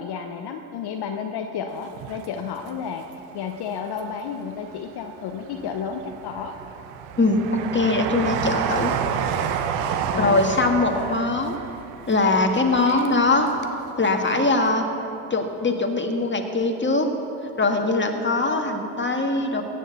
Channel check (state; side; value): normal; both; correlation 0.02